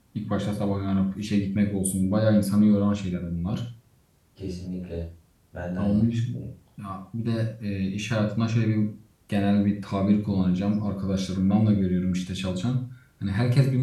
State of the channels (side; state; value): both; identical; correlation 1.00